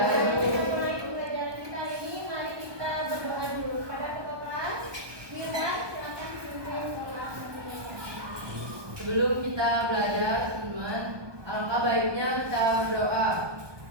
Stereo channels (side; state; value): left; late; 1.2 ms